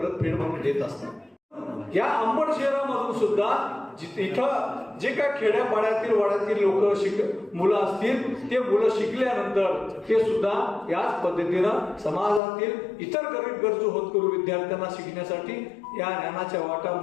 फेड म्हणून देत असतात. या अंबड शहरामधून सुद्धा इथं जे काय खेड्यापाड्यातील वाड्यातील लोक मुलं असतील, ते मुलं शिकल्यानंतर ते सुद्धा याच पद्धतीनं समाजातील इतर गरीब गरजू होतकरू विद्यार्थ्यांना शिकण्यासाठी या ज्ञानाच्या वाटा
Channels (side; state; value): right; drops out; at 12.4 s